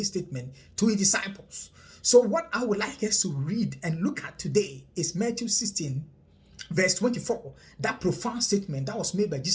statement to his disciples. So what I would like us to read and look at today is Matthew 16 verse 24, that profound statement that was made by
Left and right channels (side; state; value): both; identical; correlation 1.00